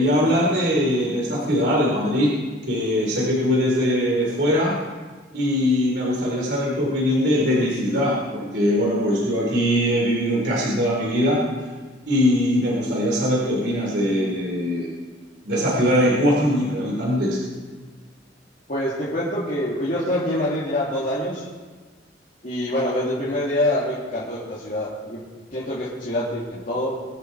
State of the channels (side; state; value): both; normal; correlation 0.48